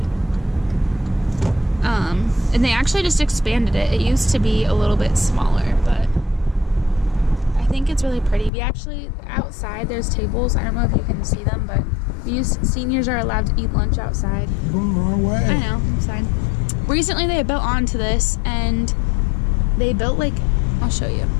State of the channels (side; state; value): right; drops out; at 8.5 s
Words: And they actually just expanded it. It used to be a little bit smaller, but I think it's really pretty. We actually, outside, there's tables. I don't know if you can see them, but seniors are allowed to eat lunch outside. You're going the wrong way. I know, I'm fine. Recently they built onto this, and they built like, I'll show you.